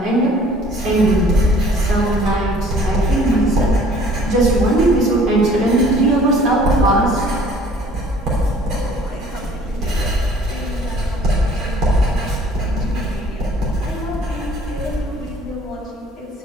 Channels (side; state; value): both; normal; correlation 0.54